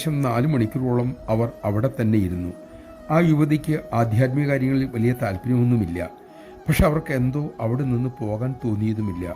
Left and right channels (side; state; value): both; identical; correlation 1.00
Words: 4 മണിക്കൂറോളം അവർ അവിടെ തന്നെ ഇരുന്നു. ആ യുവതിക്ക് ആധ്യാത്മിക കാര്യങ്ങളിൽ വലിയ താല്പര്യമൊന്നുമില്ല. പക്ഷെ അവർക്ക് എന്തോ അവിടെ നിന്ന് പോകാൻ തോന്നിയതുമില്ല.